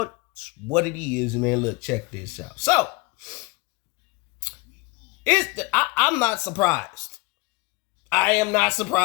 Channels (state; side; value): quieter; right; 23.6 dB